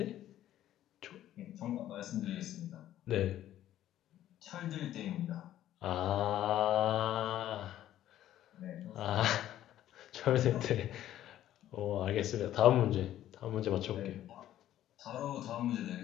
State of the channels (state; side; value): quieter; right; 12.6 dB